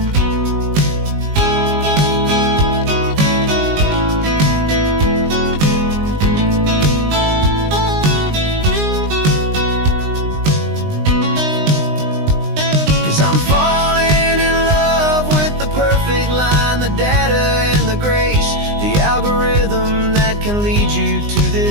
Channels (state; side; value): late; left; 19 ms